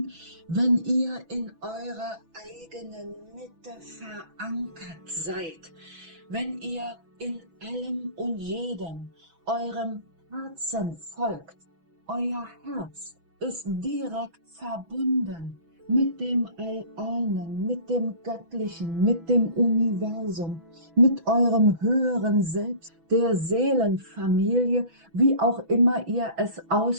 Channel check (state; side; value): late; left; 6.1 ms